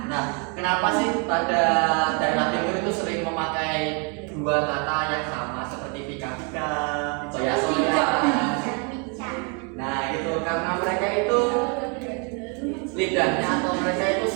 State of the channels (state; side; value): quieter; left; 35.7 dB